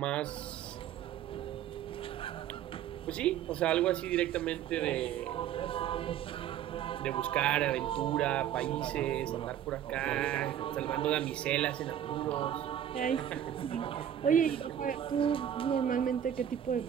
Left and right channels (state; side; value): quieter; left; 10.3 dB